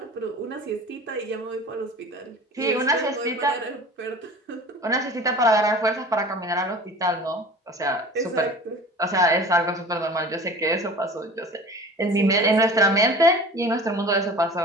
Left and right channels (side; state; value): both; normal; correlation 0.41